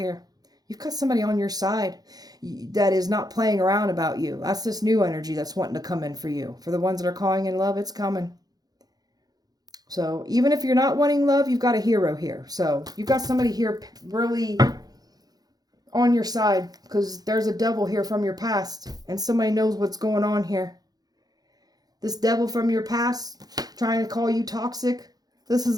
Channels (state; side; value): late; left; 0.19 ms